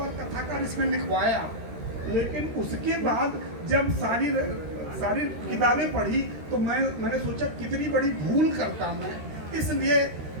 कथाकार इसमें लिखवाया, लेकिन उसके बाद जब सारी किताबें पढ़ी तो मैंने सोचा कितनी बड़ी भूल करता मैं, इसलिए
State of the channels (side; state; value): left; late; 13 ms